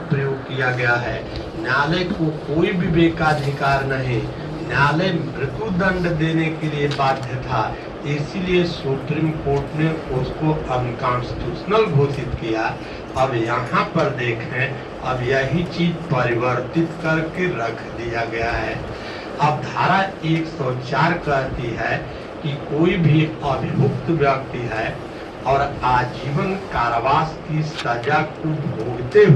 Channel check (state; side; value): identical; both; correlation 1.00